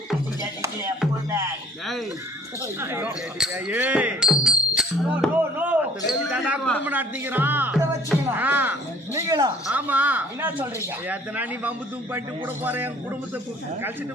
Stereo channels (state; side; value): normal; both; correlation 0.55